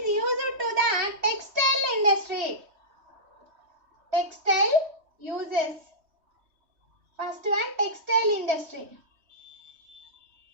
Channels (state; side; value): late; left; 3.1 ms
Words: used to the textile industry. Textile uses. First one, textile industry.